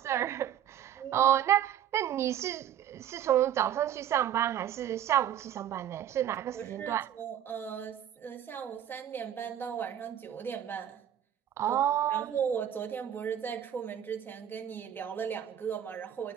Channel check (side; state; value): left; quieter; 10.3 dB